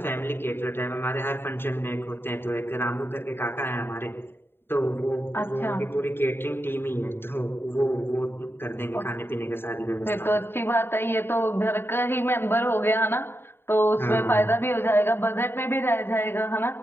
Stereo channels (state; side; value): late; right; 0.11 ms